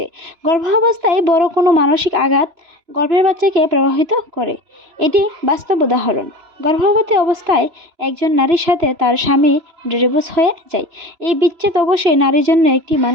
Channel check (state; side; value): late; left; 3.0 ms